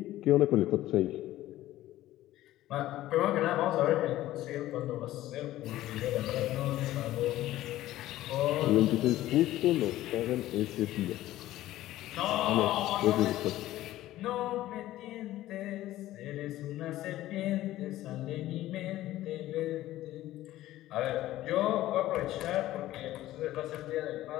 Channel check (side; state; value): right; quieter; 15.0 dB